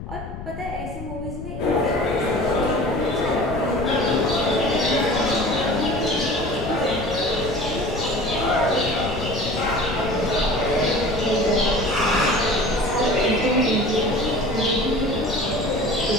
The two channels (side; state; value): left; noise; rumble, 10 dB below the sound